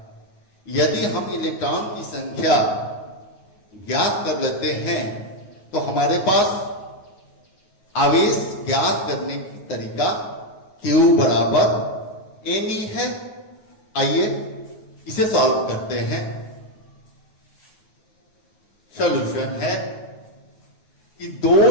यदि हम इलेक्ट्रॉन की संख्या ज्ञात कर लेते हैं तो हमारे पास आवेश ज्ञात करने की तरीका Q बराबर Ne है। आइए इसे सॉल्व करते हैं। सॉल्यूशन है कि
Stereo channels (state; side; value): late; right; 9.4 ms